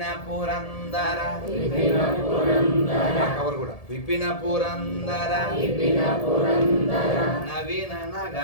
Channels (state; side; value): late; right; 1.7 ms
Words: పురందర కవర్ కూడా విపిన పురందర నవీన